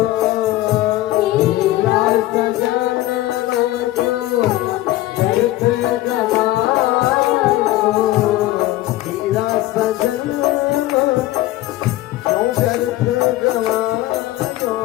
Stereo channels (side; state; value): right; quieter; 16.2 dB